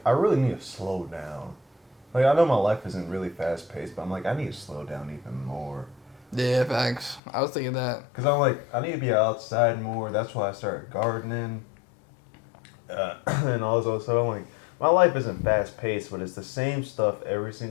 I really need to slow down. Like, I know my life isn't really fast paced, but I'm like, I need to slow down even more. Yeah, facts. I was thinking that. Because I'm like, I need to be outside more. That's why I started gardening. And also, so I'm like, my life isn't fast paced, but it's the same stuff every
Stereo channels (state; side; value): drops out; right; at 7.2 s